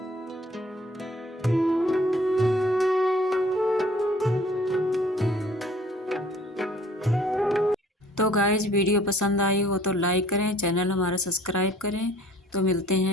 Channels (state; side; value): normal; both; correlation 0.55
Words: तो गाइज वीडियो पसंद आई हो तो लाइक करें, चैनल हमारा सब्सक्राइब करें। तो मिलते